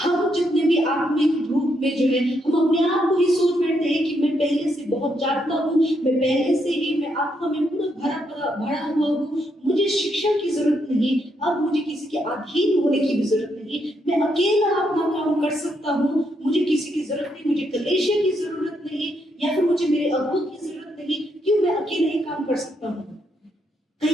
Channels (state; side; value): normal; both; correlation 0.77